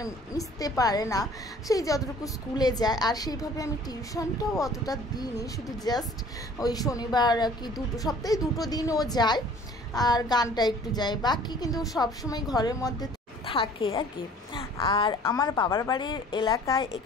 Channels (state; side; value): normal; both; correlation 0.51